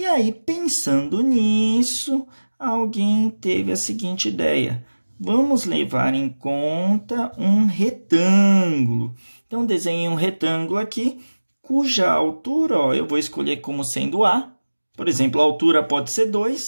aí, pensando nisso, alguém teve a seguinte ideia. Vamos levar em conta um retângulo. Então, desenhei um retângulo aqui, cuja altura, ó, eu vou escolher como sendo A. Por exemplo, a altura pode ser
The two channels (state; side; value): inverted; both; correlation -1.00